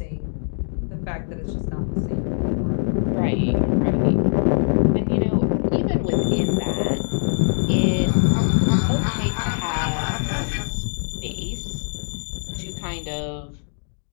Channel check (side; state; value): right; silent; digital silence